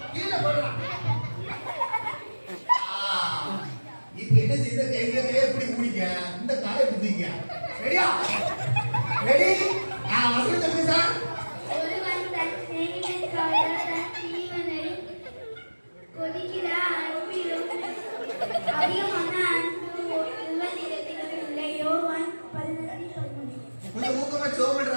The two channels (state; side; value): inverted; both; correlation -1.00